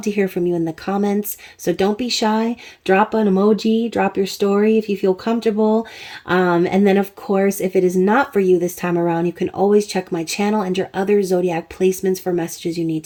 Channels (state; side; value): identical; both; correlation 1.00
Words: to hear from you in the comments. So don't be shy. Drop an emoji, drop your story if you feel comfortable. And then, of course, if it is not for you this time around, you can always check my channel and your other zodiac placements for messages you need